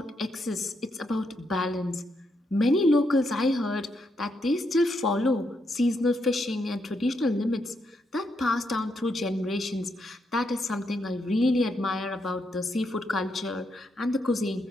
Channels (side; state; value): both; normal; correlation 0.80